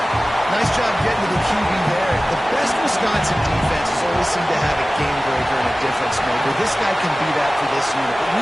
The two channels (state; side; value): normal; both; correlation 0.97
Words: Nice job getting to the QB there. The best Wisconsin defense has always seemed to have a game breaker and a difference maker. This guy can be that for this unit. But